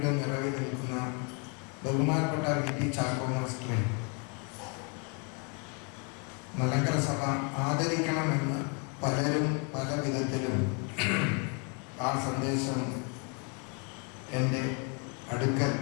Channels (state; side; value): quieter; right; 35.7 dB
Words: നിറവിൽ നിൽക്കുന്ന ബഹുമാനപ്പെട്ട VT ചാക്കോ മാസ്റ്ററെ മലങ്കര സഭ ആദരിക്കണമെന്ന് പലരും പല വിധത്തിലും ആ സന്ദേശം എൻ്റെ അടുക്കൽ